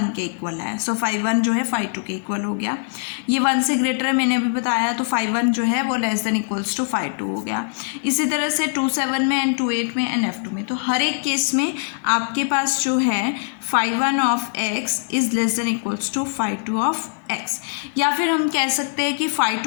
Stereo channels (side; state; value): right; silent; 56 dB below the other